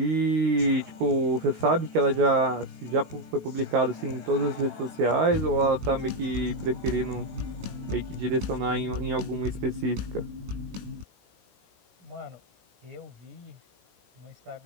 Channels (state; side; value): late; left; 17 ms